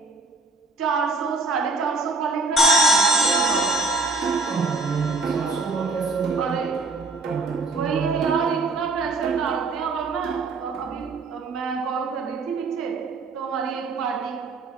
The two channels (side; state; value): left; quieter; 3.5 dB